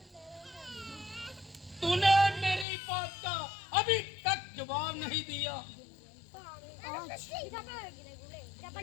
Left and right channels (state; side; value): drops out; right; at 2.7 s